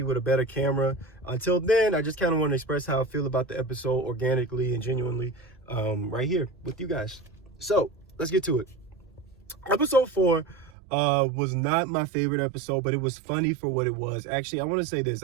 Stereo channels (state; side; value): drops out; left; at 10.7 s